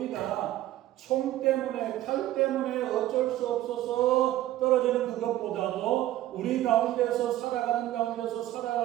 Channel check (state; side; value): quieter; left; 14.4 dB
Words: 총 때문에 칼 때문에 어쩔 수 없어서 떨어지는 그것보다도 우리 가운데서 살아가는